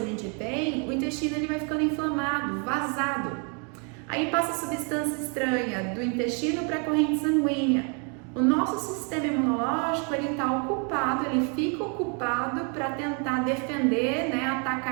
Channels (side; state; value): left; quieter; 37.4 dB